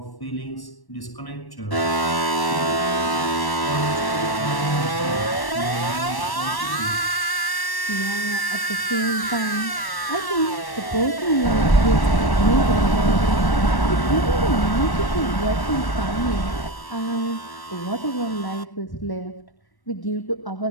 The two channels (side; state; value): right; late; 1.1 ms